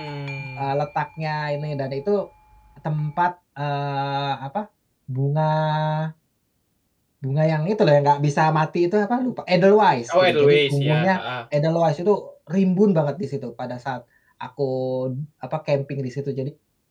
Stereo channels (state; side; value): identical; both; correlation 1.00